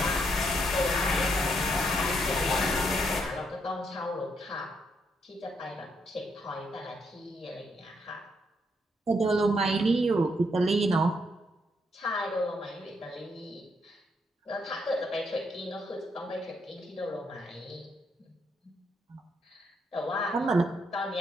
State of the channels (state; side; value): normal; both; correlation 0.76